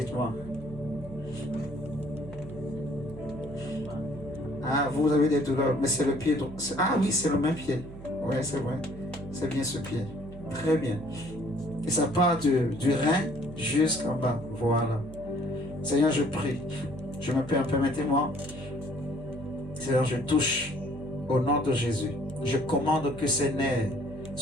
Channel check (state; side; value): noise; right; hum, 14 dB below the sound